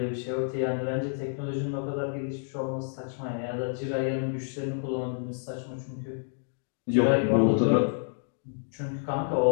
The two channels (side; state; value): right; silent; digital silence